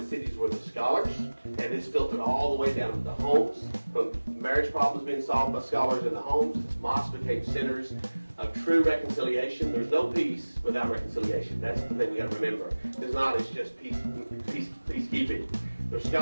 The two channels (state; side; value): inverted; both; correlation -1.00